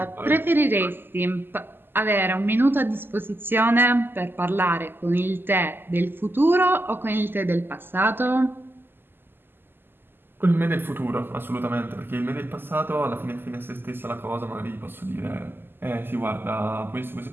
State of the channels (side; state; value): left; late; 0.098 ms